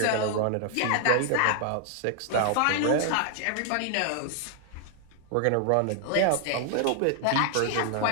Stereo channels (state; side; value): different; both; correlation 0.00